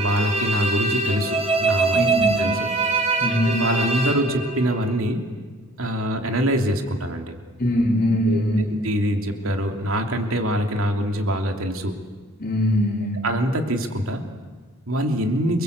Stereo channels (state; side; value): normal; both; correlation 0.53